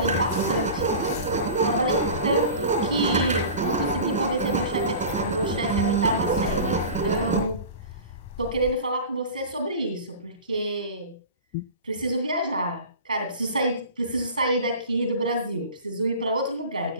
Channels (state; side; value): inverted; both; correlation -0.36